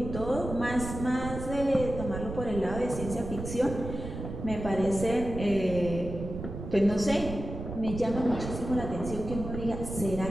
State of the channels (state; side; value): noise; right; rumble, 8 dB below the sound